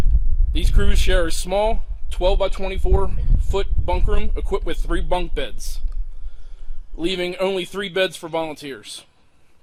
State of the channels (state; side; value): identical; both; correlation 1.00